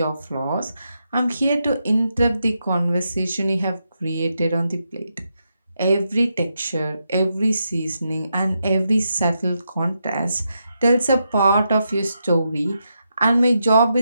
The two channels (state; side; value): inverted; both; correlation -0.84